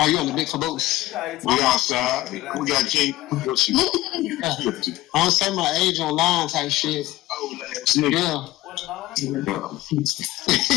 Are you on the big caboose? We outside. We got King. What you? I don't say my age online type shit. Yeah.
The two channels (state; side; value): quieter; right; 16.8 dB